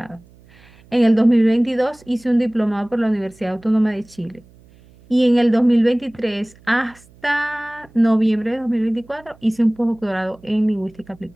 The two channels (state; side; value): noise; right; hum, 27 dB below the sound